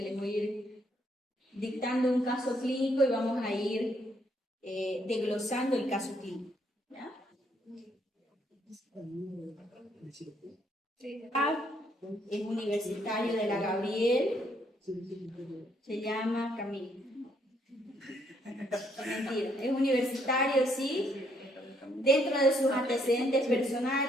les voy a ir dictando un caso clínico y vamos a ir desglosando el caso clínico. ¿Ya? Es universitario de la Gabriel, se llama Camilo. Mentira, es universitario, sí. Dentro de sus antecedentes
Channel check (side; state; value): both; normal; correlation 0.71